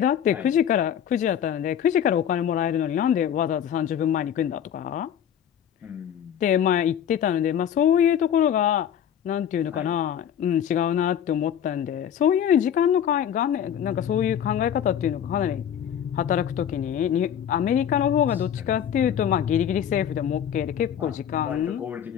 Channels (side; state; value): right; quieter; 9.3 dB